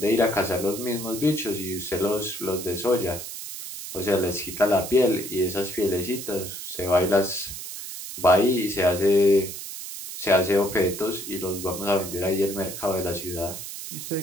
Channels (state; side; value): noise; right; hiss, 9 dB below the sound